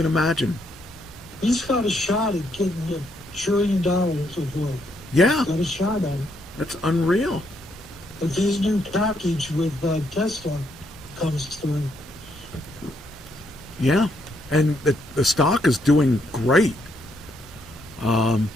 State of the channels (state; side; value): normal; both; correlation 0.75